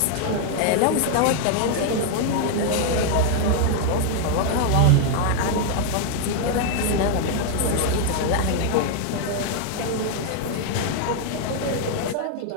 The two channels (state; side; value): different; both; correlation 0.00